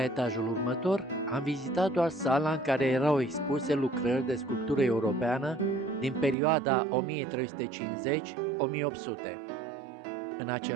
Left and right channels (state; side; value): drops out; left; at 6.4 s